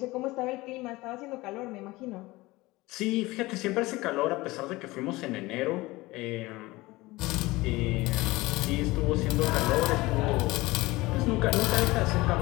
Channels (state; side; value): quieter; right; 20.5 dB